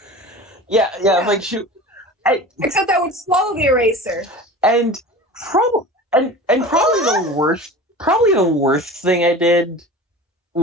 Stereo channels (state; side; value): normal; both; correlation 0.36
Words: Yeah, like shoot. Except I would swallow the eraser. And probably the worst thing I did